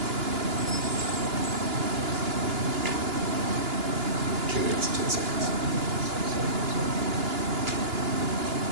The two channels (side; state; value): left; late; 2.9 ms